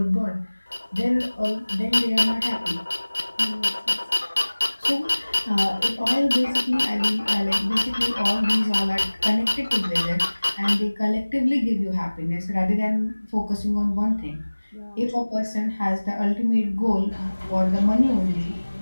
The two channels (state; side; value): inverted; both; correlation -1.00